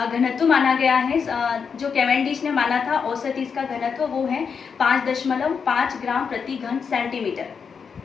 माना गया है, जो कैवेंडिश ने माना था, औसत इसका घनत्व वो है 5.5 ग्राम प्रति घन सेंटीमीटर।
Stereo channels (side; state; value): right; quieter; 6.1 dB